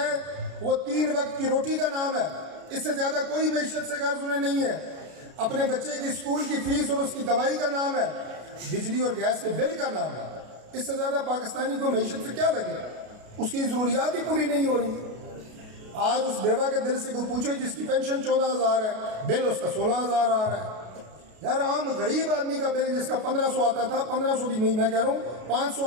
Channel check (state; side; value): late; left; 33 ms